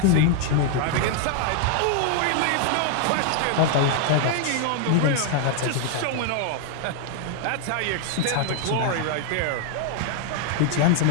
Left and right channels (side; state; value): both; different; correlation 0.00